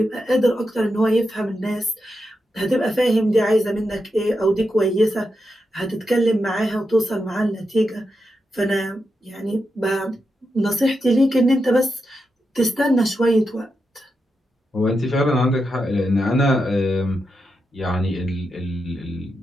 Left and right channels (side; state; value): both; normal; correlation 0.87